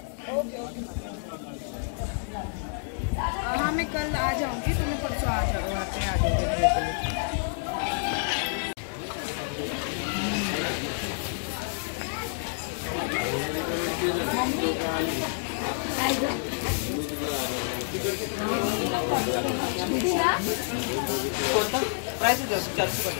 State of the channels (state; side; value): silent; right; digital silence